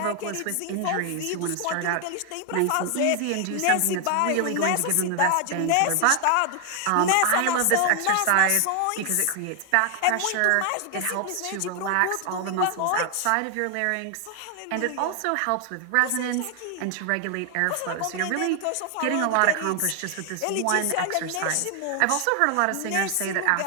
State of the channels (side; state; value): both; different; correlation 0.00